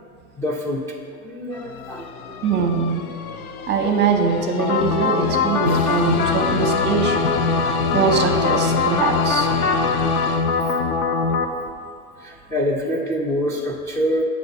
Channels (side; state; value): both; normal; correlation 0.06